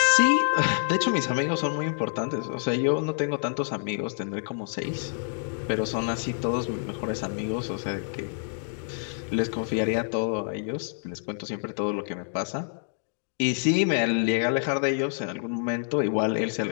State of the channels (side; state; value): right; silent; digital silence